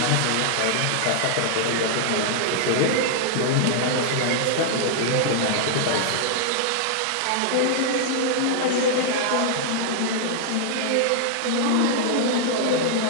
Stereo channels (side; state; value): both; different; correlation -0.01